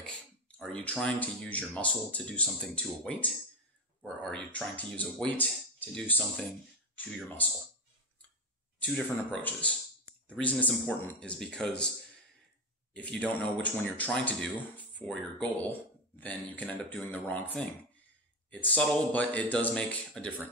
are you trying to use your muscle to do something to a weight, or are you trying to use a weight to do something to your muscle? Two different approaches. The reason it's important is because if you don't know which one you're trying to do for your goal, then you can end up doing the wrong thing. It's subtle, but it does make a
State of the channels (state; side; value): normal; both; correlation 0.15